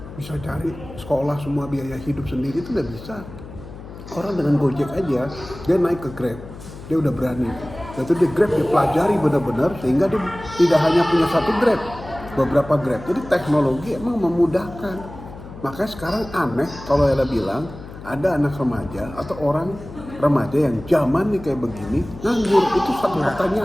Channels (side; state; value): left; noise; hum, 14 dB below the sound